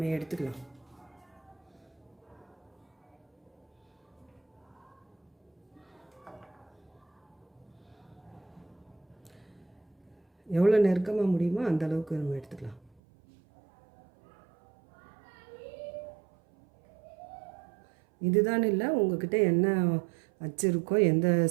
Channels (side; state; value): left; drops out; at 12.9 s